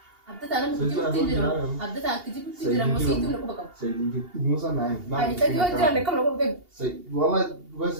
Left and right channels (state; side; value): late; left; 2.8 ms